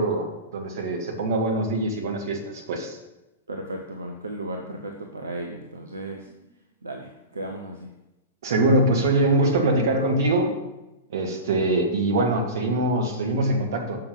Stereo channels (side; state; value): both; inverted; correlation -0.31